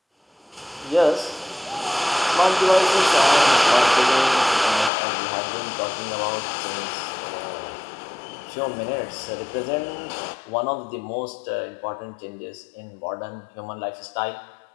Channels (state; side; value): drops out; right; at 4.9 s